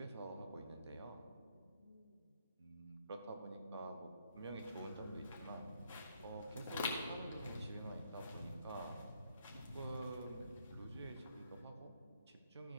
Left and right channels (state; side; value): inverted; both; correlation -0.72